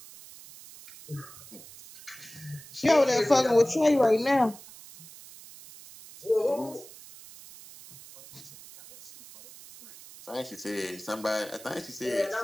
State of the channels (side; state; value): right; noise; hiss, 18 dB below the sound